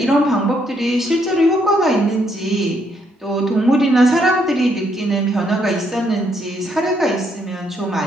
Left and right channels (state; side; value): normal; both; correlation 0.73